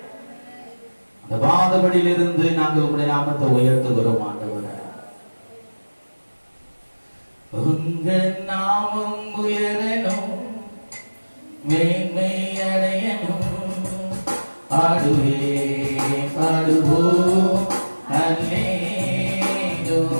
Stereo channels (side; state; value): both; inverted; correlation -1.00